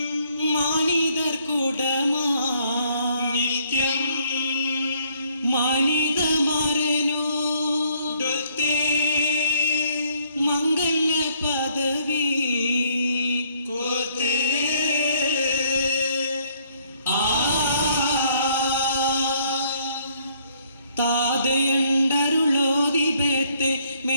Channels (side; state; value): both; inverted; correlation -0.65